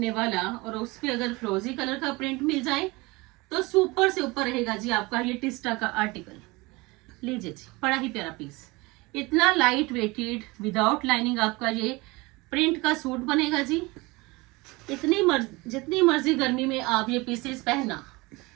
वाला, और उस पे अगर फ्रोजी कलर का प्रिंट मिल जाए तो सुपर से ऊपर रहेगा जी आपका ये टिस्टा का आर्टिकल। लीजिए जी, बड़ा ही प्यारा पीस, इतना लाइट वेटेड विदाउट लाइनिंग आपका ये प्रिंट का सूट बनेगा जी। जितनी मर्जी गर्मी में आप ये पीसेस पहनना,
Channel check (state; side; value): quieter; left; 23.6 dB